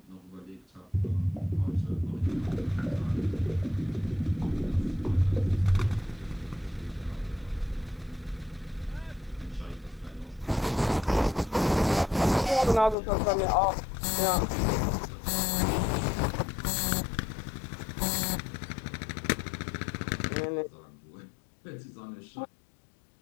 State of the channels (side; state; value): right; drops out; at 13.0 s